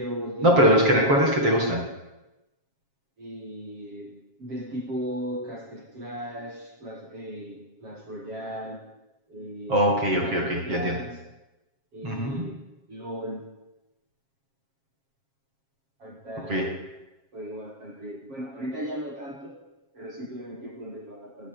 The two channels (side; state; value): left; late; 7.4 ms